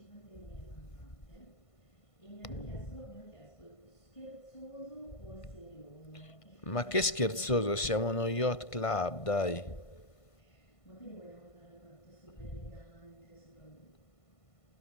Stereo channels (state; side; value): late; right; 1.5 ms